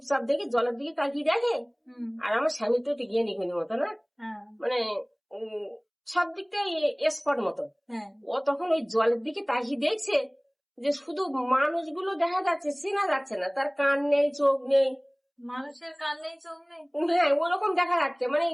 দেখে জলের দিকে তাকিয়ে দেখে, আর আমার স্বামী তো একটু গিয়ে নিখুনি মতো না, মানে সব দিকটা স্পট মতো। ও তখন ওই জলের দিকে তাকিয়ে দেখছে যে শুধু মানুষগুলো দেখা যাচ্ছে, চেনা যাচ্ছে না, তার কান নেই, চোখ নেই। মানুষের কান নেই, চোখ নেই, হ্যাঁ ওরকম দেখা যাচ্ছে, মানে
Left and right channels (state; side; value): identical; both; correlation 1.00